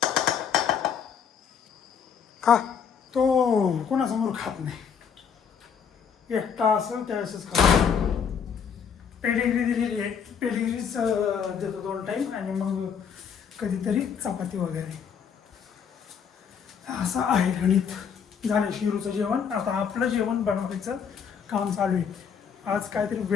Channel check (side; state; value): right; quieter; 7.1 dB